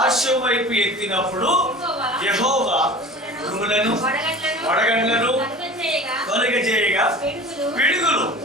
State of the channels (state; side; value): normal; both; correlation 0.38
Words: వైపు ఎత్తినప్పుడు యెహోవా ఉరుములను వడగండ్లను తొలగజేయగా పిడుగులు